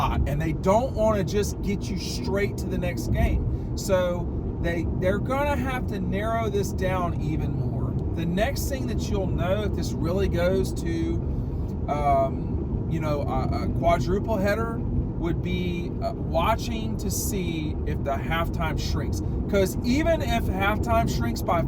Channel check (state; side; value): identical; both; correlation 1.00